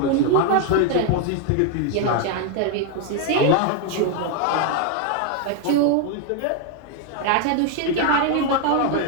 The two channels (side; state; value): both; different; correlation 0.01